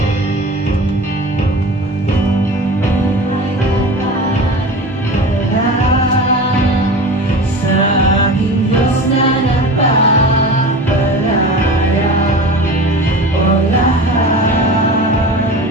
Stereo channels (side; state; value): both; normal; correlation 0.34